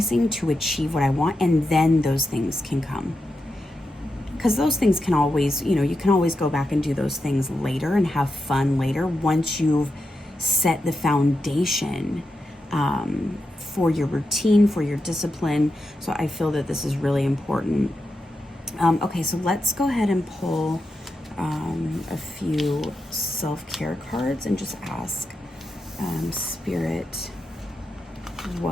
to achieve what I want? And then those things can come. Because those things can always, you know, you can always go back and do those things later and have fun later once you've set the foundation for your routine, for your discipline. So I feel that this is really important. Okay, so let's go ahead and pull a few self-care cards and just ask Spirit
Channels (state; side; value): normal; both; correlation 0.87